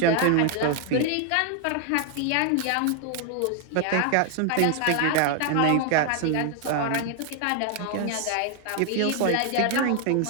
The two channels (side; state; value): both; different; correlation 0.00